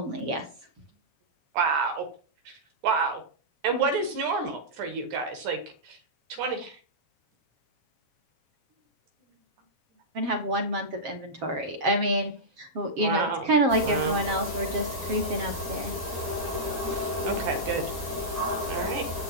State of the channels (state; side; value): late; left; 7.9 ms